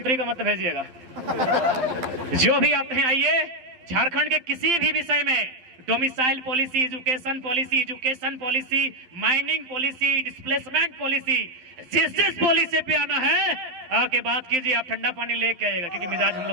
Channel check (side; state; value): left; late; 12 ms